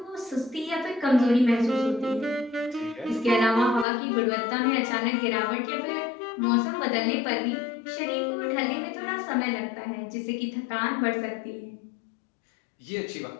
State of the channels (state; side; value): drops out; right; at 3.9 s